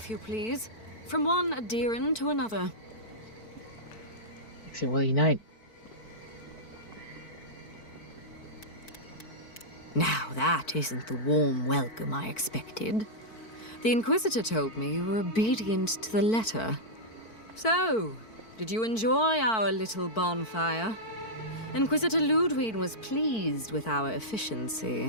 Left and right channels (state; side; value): late; right; 4.5 ms